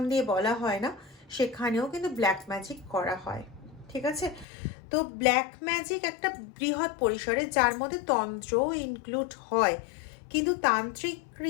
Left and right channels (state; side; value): drops out; right; at 4.5 s